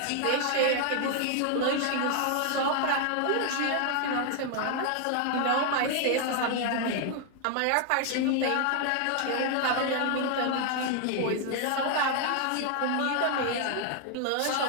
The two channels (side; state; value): both; different; correlation 0.00